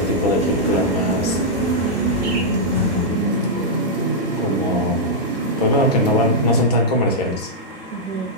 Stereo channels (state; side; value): normal; both; correlation -0.07